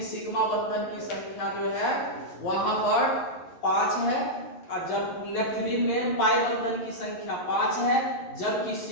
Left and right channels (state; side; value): late; right; 11 ms